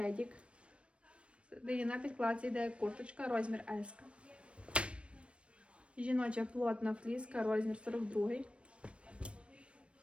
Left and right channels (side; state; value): left; late; 0.060 ms